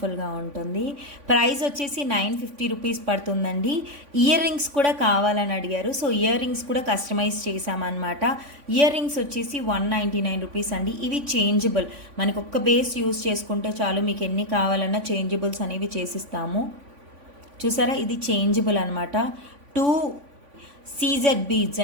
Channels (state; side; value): late; left; 3.5 ms